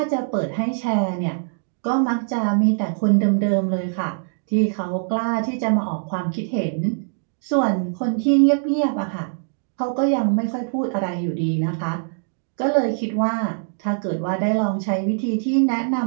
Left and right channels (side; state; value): left; silent; digital silence